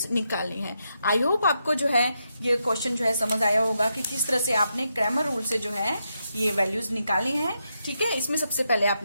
निकालनी है। आई होप आपको जो है ये क्वेश्चन जो है समझ आया होगा कि किस तरह से आपने क्रैमर रूल से जो है ये वैल्यूज निकालनी है। ठीक है, इसमें सबसे पहले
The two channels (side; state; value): both; inverted; correlation -0.83